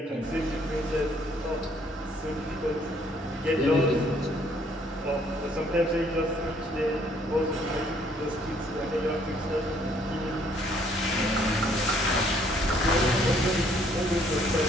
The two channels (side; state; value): both; normal; correlation 0.64